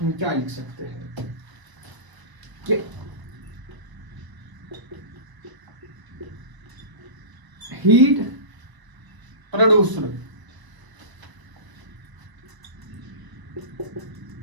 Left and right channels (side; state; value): left; late; 1.0 ms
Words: क्या लिख सकते हैं कि heat produced